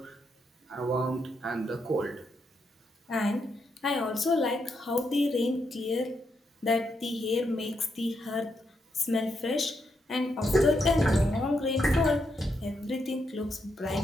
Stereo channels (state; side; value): normal; both; correlation 0.80